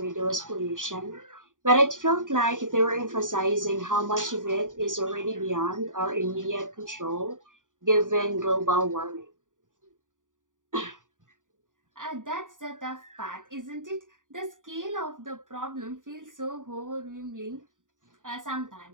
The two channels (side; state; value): left; late; 0.88 ms